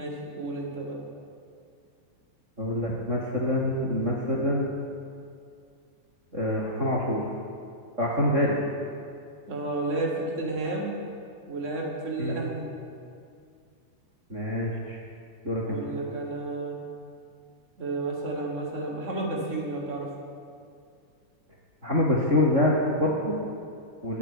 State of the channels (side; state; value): left; late; 3.6 ms